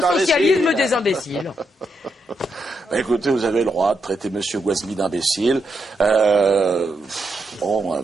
des imbéciles. Écoutez, vous avez le droit de traiter M. Guasmi d'imbécile.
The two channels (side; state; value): both; normal; correlation 0.82